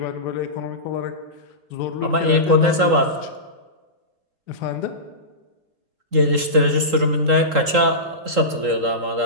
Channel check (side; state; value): left; late; 3.8 ms